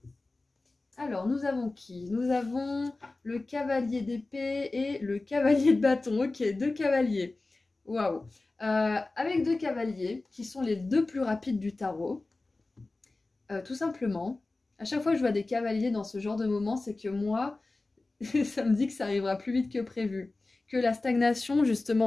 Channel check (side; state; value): right; quieter; 3.2 dB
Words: Alors, nous avons qui? Nous avons le cavalier d'épée et le cavalier de bâton. Ok, 2 cavaliers. Waouh. Avec 2 cavaliers, qui sont les 2 plus rapides du tarot, tout simplement, à chaque fois que je vois des cavaliers dans ce genre de moment, c'est que moi, ça me dit que ça arrivera plus vite que prévu. Que la stagnation,